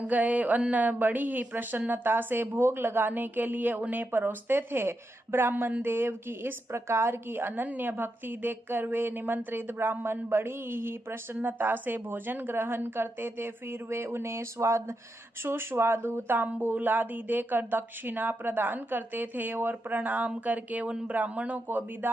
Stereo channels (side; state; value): both; normal; correlation 0.85